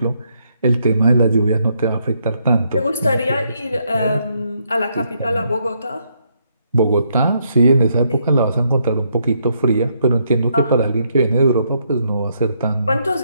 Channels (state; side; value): inverted; both; correlation -0.75